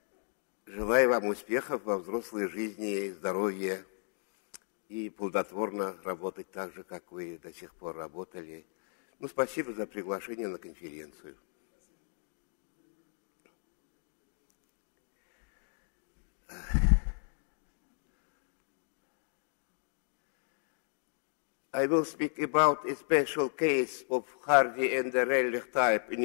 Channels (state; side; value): silent; right; 55 dB below the other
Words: Желаю вам успехов во взрослой жизни, здоровья и плодотворно работать так же, как вы до сих пор работали. Ну, спасибо за приглашение на конференцию. I will speak about a special case of Hardy and the Rayleigh type